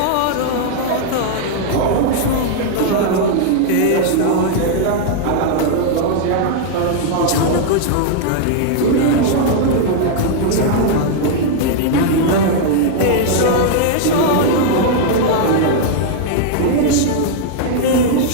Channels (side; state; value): both; different; correlation -0.01